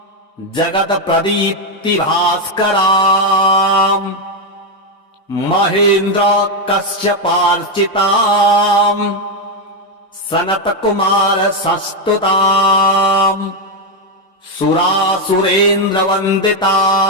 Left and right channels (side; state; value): both; normal; correlation 0.05